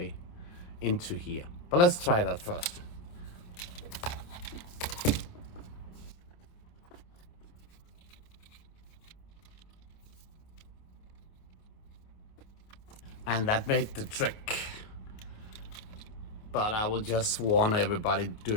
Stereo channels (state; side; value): late; right; 28 ms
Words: into here. But let's try that first. And that made the trick. But I will just warn everybody